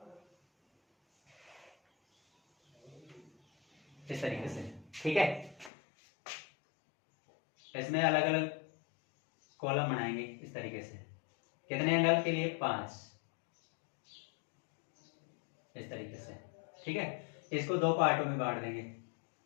इस तरीके से। ठीक है, इसमें अलग अलग कॉलम बनाएंगे इस तरीके से। कितने एंगल के लिए, 5, इस तरीके से। ठीक है, इसको 2 पार्टों में बांट देंगे।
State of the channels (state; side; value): drops out; right; at 5.7 s